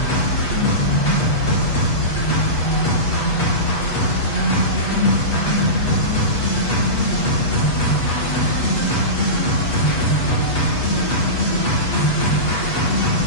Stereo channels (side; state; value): right; late; 8.2 ms